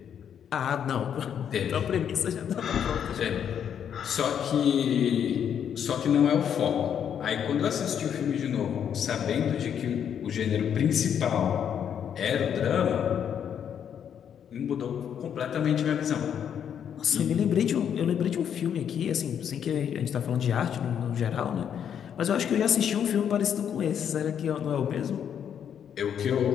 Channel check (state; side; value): quieter; right; 8.6 dB